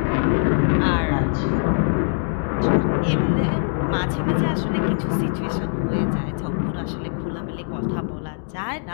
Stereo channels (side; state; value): right; silent; 62 dB below the other